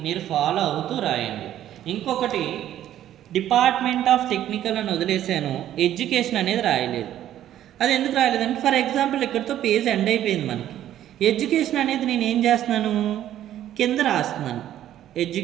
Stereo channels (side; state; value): left; quieter; 11.9 dB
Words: మీరు ఫాలో అవుతూ రాయండి. ఇంకొకటి, డిపార్ట్మెంట్ ఆఫ్ టెక్నికల్ అని వదిలేసాను, ఎడ్యుకేషన్ అనేది రాయలేదు. అది ఎందుకు రాయలేదంటే ఫర్ ఎగ్జాంపుల్ ఇక్కడితో పేజ్ ఎండ్ అయిపోయింది మనకి. ఎడ్యుకేషన్ అనేది నేను ఏం చేస్తున్నాను, కింద రాస్తున్నాను.